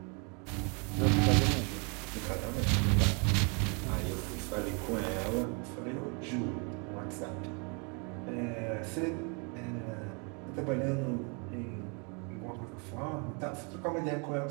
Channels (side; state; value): left; quieter; 34.5 dB